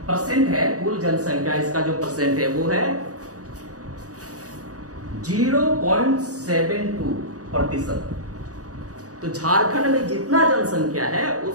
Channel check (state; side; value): late; left; 0.67 ms